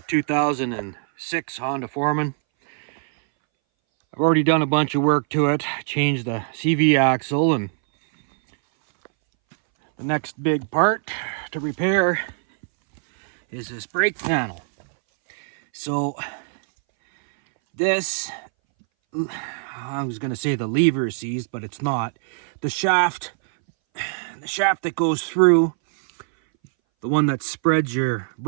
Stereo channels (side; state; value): left; silent; 62 dB below the other